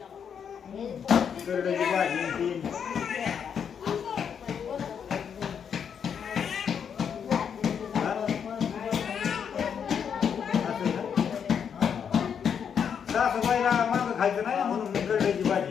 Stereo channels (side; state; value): right; quieter; 7.5 dB